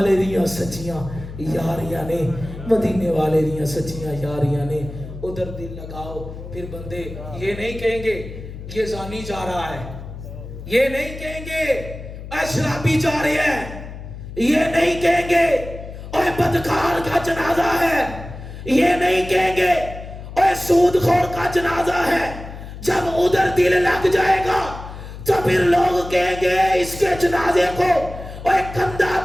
دیاں سچیاں یاریاں نے, مدینے والے دیاں سچیاں یاریاں نے. ادھر دل لگاؤ. پھر بندے یہ نہیں کہیں گے یہ زانی جا رہا ہے, یہ نہیں کہیں گے اے شرابی جا رہے ہیں, یہ نہیں کہیں گے اے بدکار کا جنازہ ہے, یہ نہیں کہیں گے اے سود خور کا جنازہ ہے. جب ادھر دل لگ جائے گا تو پھر لوگ کہیں گے اس کے جنازے کو اے کندھا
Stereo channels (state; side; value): noise; left; hum, 12 dB below the sound